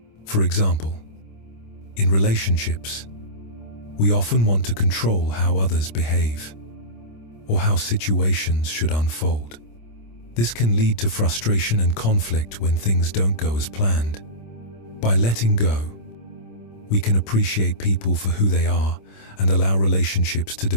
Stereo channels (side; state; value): right; late; 26 ms